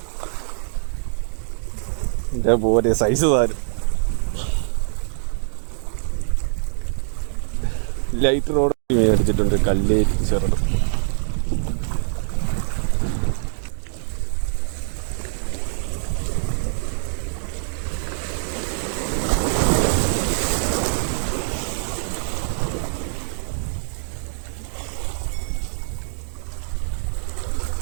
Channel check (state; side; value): silent; left; digital silence